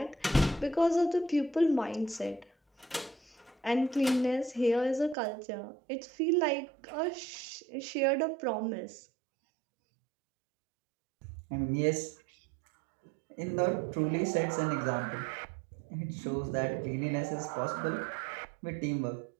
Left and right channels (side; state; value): left; drops out; at 5.2 s